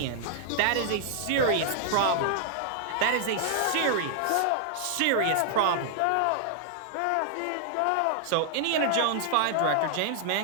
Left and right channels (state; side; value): different; both; correlation -0.01